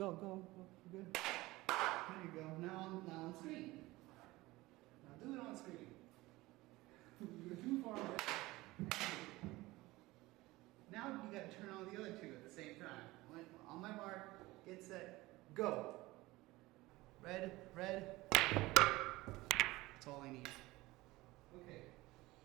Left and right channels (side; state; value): left; quieter; 19.7 dB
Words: Good. There you go. Now on screen. Now do it on screen. You're too far away. Now you gotta turn on the other two at the same time. On my mark, get set, go. Red. That's all I need. Okay.